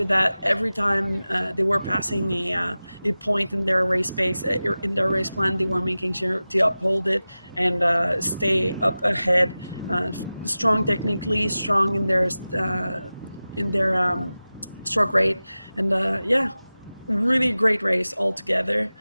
that every time they were passing a point in their race pace, in their race plan, they were making sure to uphold it and stay up ahead. Strong technically, strong in their stroke rate, and yeah, really great race altogether,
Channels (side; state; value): both; inverted; correlation -0.96